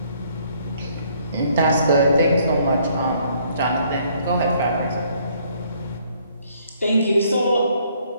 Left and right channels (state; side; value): inverted; both; correlation -0.65